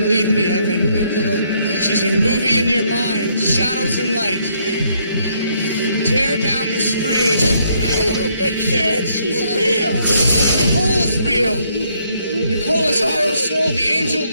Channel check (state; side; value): inverted; both; correlation -0.70